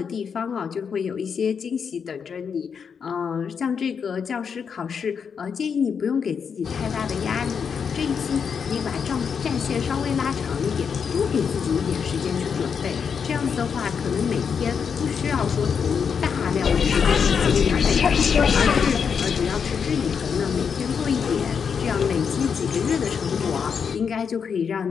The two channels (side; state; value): right; quieter; 6.6 dB